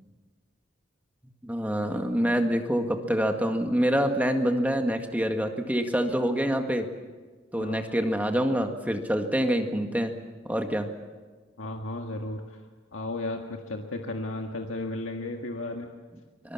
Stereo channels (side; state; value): both; normal; correlation 0.80